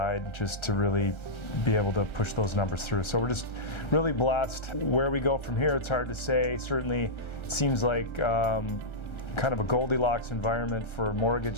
just to really be able to push those numbers through. So we're just really blessed. Where we go from here, it's hard to say. Certainly it seems like kind of a Goldilocks environment for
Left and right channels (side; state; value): right; late; 1.3 ms